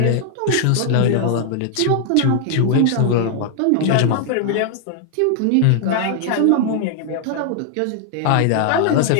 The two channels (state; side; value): different; both; correlation 0.00